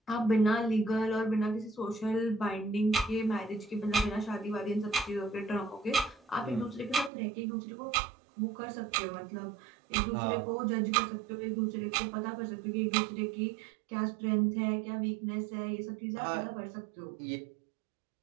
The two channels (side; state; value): left; drops out; at 7.1 s